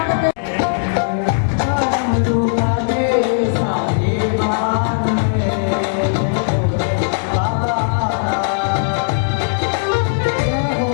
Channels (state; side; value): silent; right; digital silence